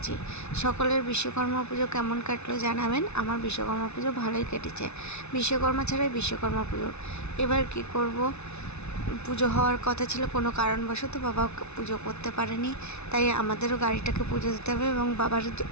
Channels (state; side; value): late; right; 0.81 ms